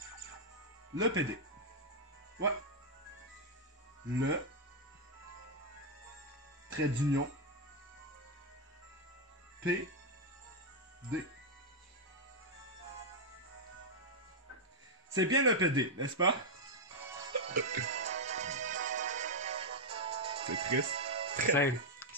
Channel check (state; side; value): normal; both; correlation -0.02